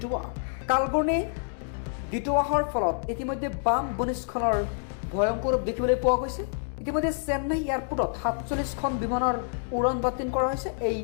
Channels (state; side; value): silent; right; digital silence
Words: কালঘূৰ্ণী দিটোৱাহৰ ফলত ইতিমধ্যে বাম ভূমিস্খলনৰ ভয়ংকৰ ৰূপ দেখিবলৈ পোৱা গৈছে। ইতিমধ্যে চেন্নাই এয়াৰপোৰ্টত 47খন বিমানৰ উৰণ বাতিল কৰা হৈছে। এই